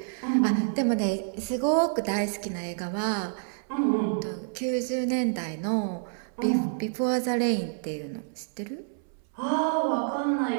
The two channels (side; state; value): left; silent; 59 dB below the other